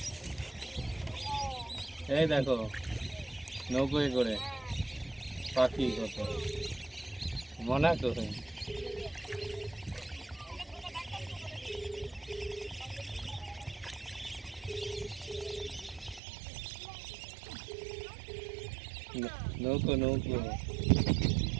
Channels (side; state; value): left; drops out; at 16.2 s